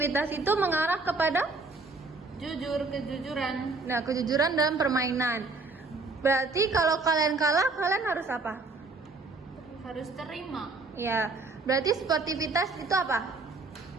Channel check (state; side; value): quieter; left; 3.7 dB